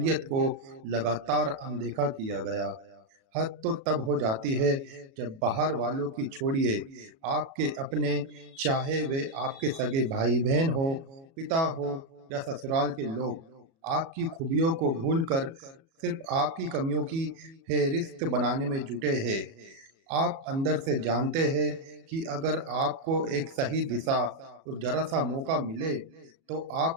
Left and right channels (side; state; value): left; late; 37 ms